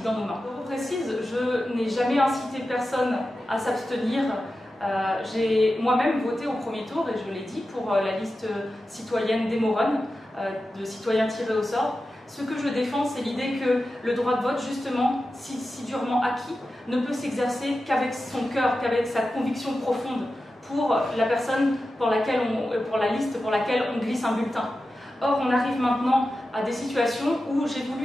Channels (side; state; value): both; normal; correlation 0.92